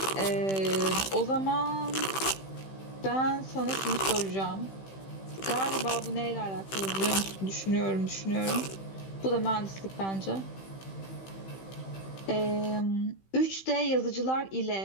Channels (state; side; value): late; right; 15 ms